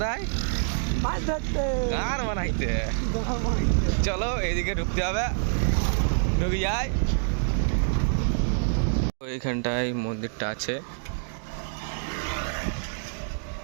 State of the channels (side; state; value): left; silent; digital silence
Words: মাছ ধরতে, গান বানাইতে। চলো এইদিকে ঢুকতে হবে, ঢুকে যাই। ওইখানটায় মন্দিরটা আছে।